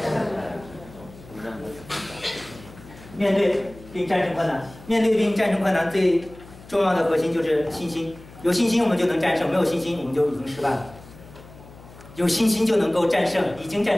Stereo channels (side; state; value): left; noise; hum, 20 dB below the sound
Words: 胜的。面对并战胜困难，面对并战胜困难最重要的核心就是信心。有信心我们就能战胜，没有信心我们就已经失败了。有信心就能够战胜，已经